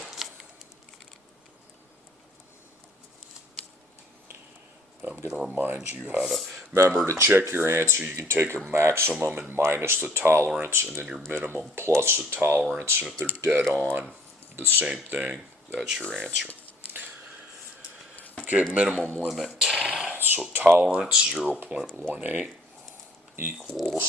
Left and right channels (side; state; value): both; normal; correlation 0.59